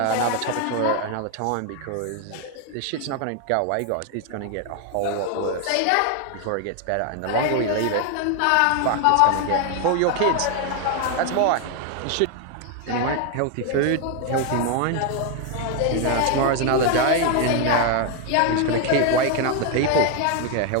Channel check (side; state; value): both; different; correlation 0.01